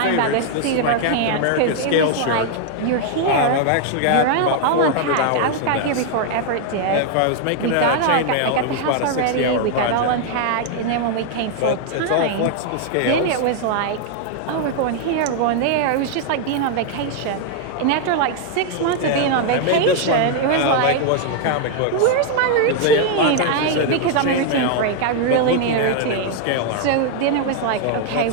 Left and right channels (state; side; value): different; both; correlation 0.00